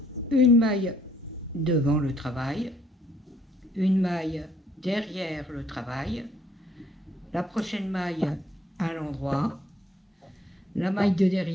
Une maille devant le travail, une maille derrière le travail, la prochaine maille à l'endroit, la maille de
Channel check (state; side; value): normal; both; correlation 0.65